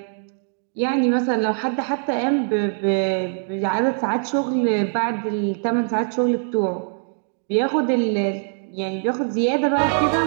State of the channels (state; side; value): silent; left; digital silence